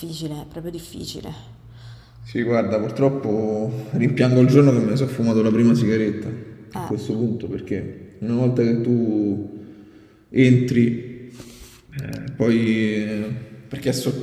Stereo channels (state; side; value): identical; both; correlation 1.00